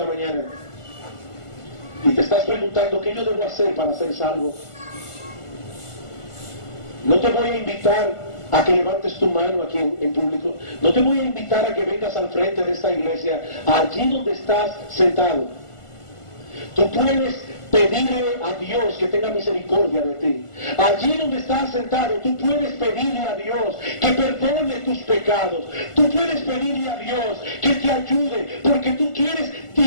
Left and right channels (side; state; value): right; late; 1.5 ms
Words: mañana y te estás preguntando qué yo debo hacer para ser salvo. No te voy a invitar a que levantes tu mano aquí en público. No te voy a invitar a que vengas al frente de esta iglesia, allí donde estás sentado. Tú puedes pedirle a Dios que tenga misericordia de ti. Allí donde estás sentado, tú puedes pedirle a Dios que perdone tus pecados. Tú puedes pedirle a Dios que te ayude, porque tú quieres